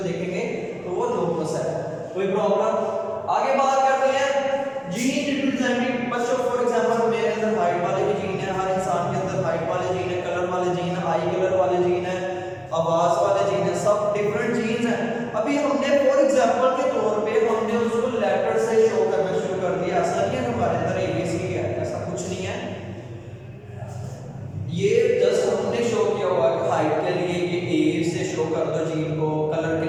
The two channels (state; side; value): identical; both; correlation 1.00